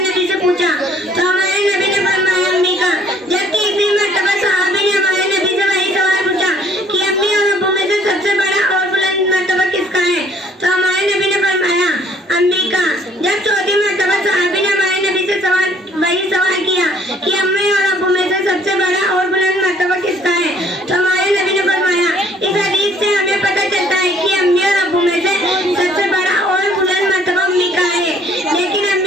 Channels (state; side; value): normal; both; correlation 0.61